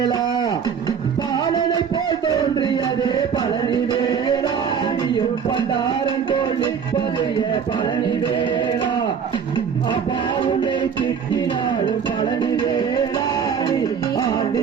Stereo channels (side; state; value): left; quieter; 7.1 dB